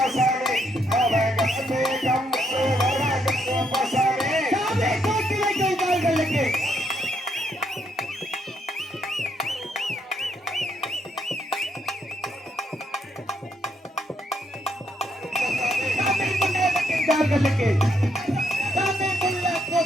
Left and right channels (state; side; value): normal; both; correlation 0.75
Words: அவன் கம்பு வர கருப்பசாமி சாமி தூக்கி வைக்கும் கால்களுக்கு கால்களுக்கு சாமி புள்ள